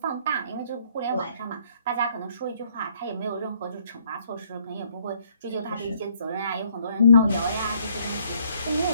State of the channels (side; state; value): both; inverted; correlation -0.66